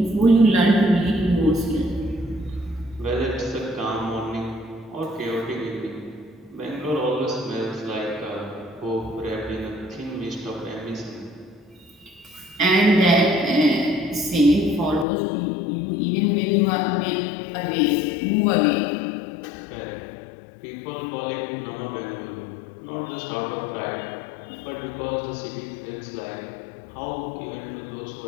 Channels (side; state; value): right; drops out; at 15.1 s